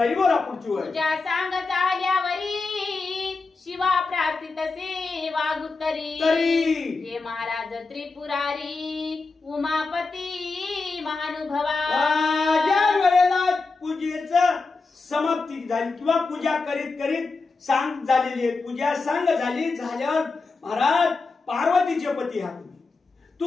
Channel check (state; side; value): quieter; right; 4.0 dB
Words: बोला पुढची वेळ. पूजा सांग चाल्यावरी शिवा प्रार्थित सेवा गुत्तरी. हे महाराज त्रिपुरारी उमापती महानुभवा. ज्या वेळेला पूजेचं समाप्ती झाली किंवा पूजा करीत करीत सांग झालेली आहे, पूजा सांग झाल्यावर महाराज पार्वतीचे पती हा